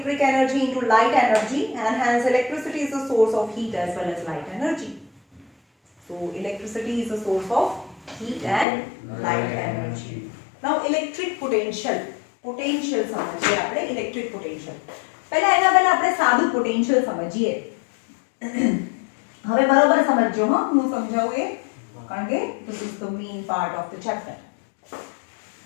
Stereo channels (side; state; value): right; drops out; at 8.7 s